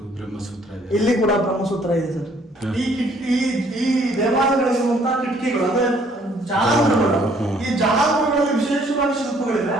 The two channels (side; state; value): both; normal; correlation 0.62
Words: ಇಲ್ಲಿ ಕೂಡ ಬ್ರಹ್ಮಸೂತ್ರ ಇದೆ ಸರ್. ಈ ದೇವಾಲಯಗಳಿರುವಂತಹ ಕಿಟಕಿಗಳು ಅಂದ್ರೆ ಜಾಲಂಬರಗಳು, ಈ ಜಾಲಂಬರಗಳಲ್ಲಿ ವಿಶೇಷವಾಗಿ ಶಿಲ್ಪಗಳಿವೆ.